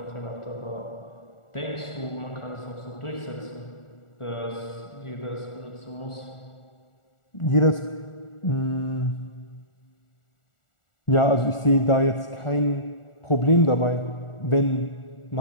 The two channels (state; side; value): late; right; 1.4 ms